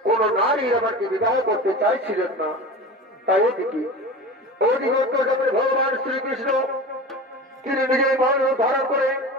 কোন নারী ইরাবানকে বিবাহ করতে চাইছিলেন না। তাই ওদিকে অন্তর্জামের ভগবান শ্রীকৃষ্ণ তিনি নিজেই মন ধারণ করে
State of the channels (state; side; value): normal; both; correlation 0.32